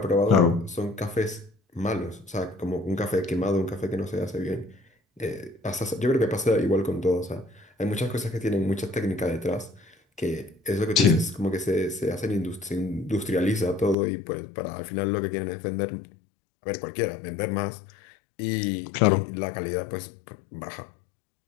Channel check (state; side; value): drops out; right; at 14.0 s